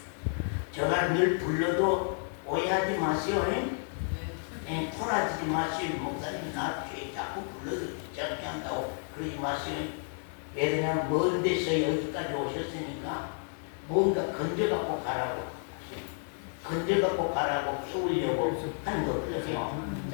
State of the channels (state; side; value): silent; right; 57 dB below the other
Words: 제가 늘 불러도 오해하지 마세요. 토라지지 마세요. 목사님 나 자꾸 불러도 귀찮게 한다고 그러지 마세요. 왜냐면 먼 데서 여기까지 오셨으니까 뭔가 건져갖고 가라고 키우려고 하는 거거든요.